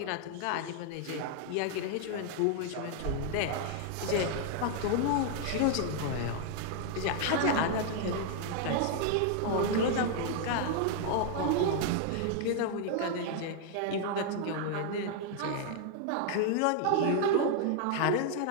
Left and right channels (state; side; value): different; both; correlation 0.00